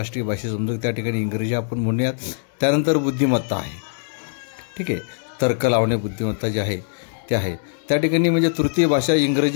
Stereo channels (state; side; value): silent; right; digital silence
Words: भाषा समजू, त्या ठिकाणी इंग्रजी आपण म्हणूयात। त्यानंतर बुद्धिमत्ता आहे, ठीक आहे, तर्क लावणे बुद्धिमत्ता जे आहे ते आहे। त्या ठिकाणी म्हणजे तृतीय भाषा